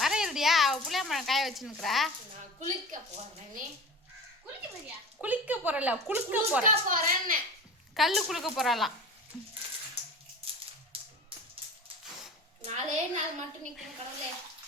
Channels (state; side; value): normal; both; correlation 0.35